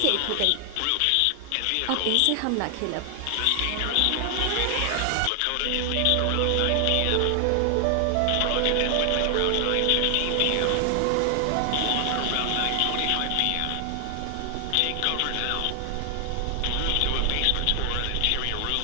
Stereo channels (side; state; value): both; different; correlation 0.00